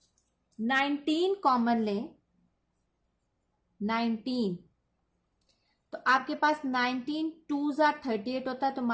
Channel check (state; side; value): identical; both; correlation 1.00